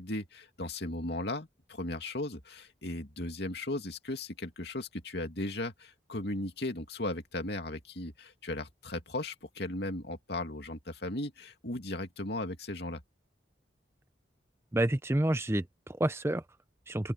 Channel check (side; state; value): both; normal; correlation 0.58